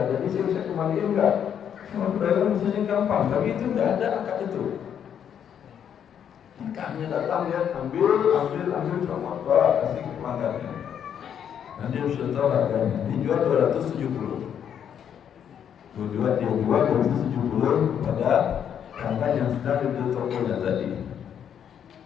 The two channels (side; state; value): right; quieter; 8.7 dB